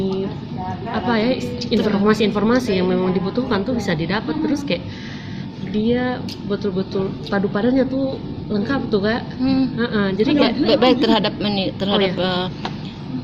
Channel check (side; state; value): both; identical; correlation 1.00